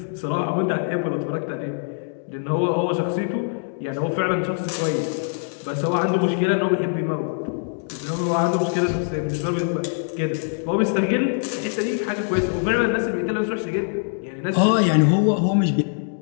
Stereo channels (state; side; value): silent; right; digital silence